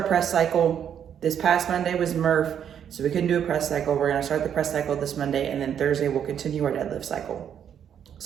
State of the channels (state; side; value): quieter; left; 8.8 dB